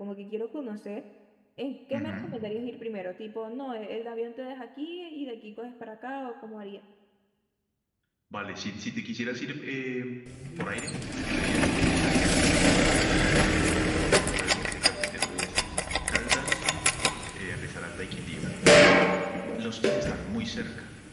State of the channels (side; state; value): both; identical; correlation 1.00